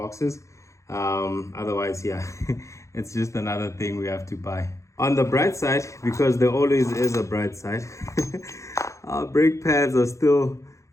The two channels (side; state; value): right; late; 0.15 ms